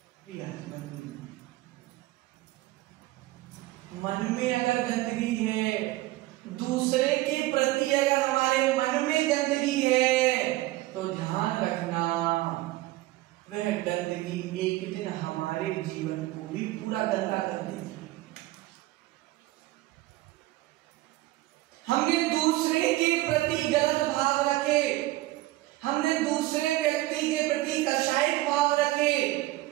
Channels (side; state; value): left; quieter; 17.9 dB